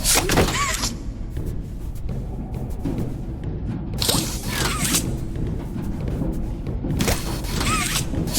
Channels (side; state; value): both; identical; correlation 1.00